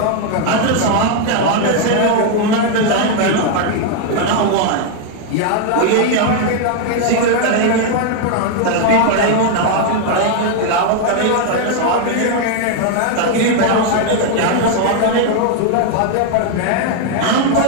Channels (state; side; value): different; both; correlation 0.00